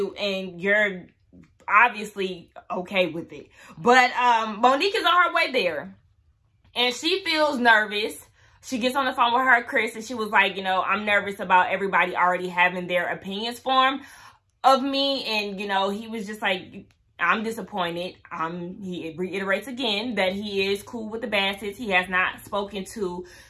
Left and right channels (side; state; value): both; identical; correlation 1.00